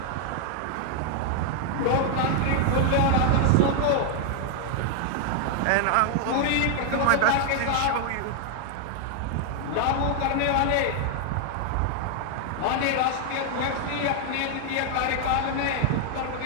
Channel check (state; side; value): different; both; correlation 0.00